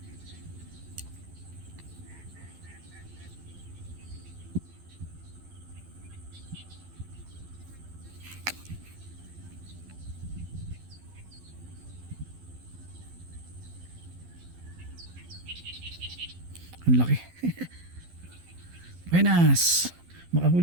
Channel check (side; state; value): left; late; 12 ms